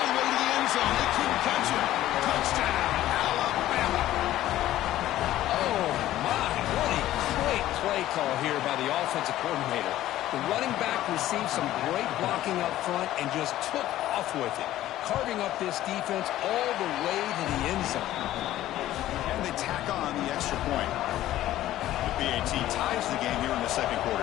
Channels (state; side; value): quieter; right; 14.0 dB